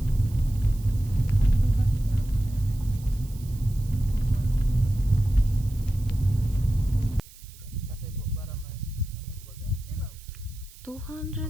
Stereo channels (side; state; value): right; noise; hiss, 22 dB below the sound